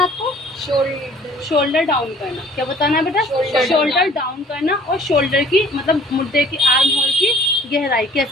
शोल्डर डाउन करना। क्या बताना है बेटा, शोल्डर डाउन करना। और शोल्डर की मतलब मुद्दे की, आर्म होल की गहराई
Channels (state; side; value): normal; both; correlation 0.52